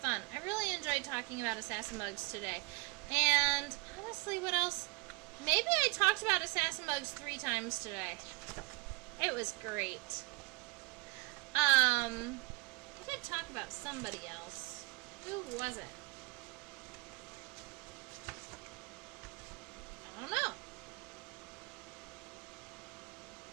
I really enjoyed talking about assassin bugs today. And honestly, what else? Maybe I talked about assassin bugs 3 times today. It was great. I did talk about somebody else. Who was it? I don't know.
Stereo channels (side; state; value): left; quieter; 27.8 dB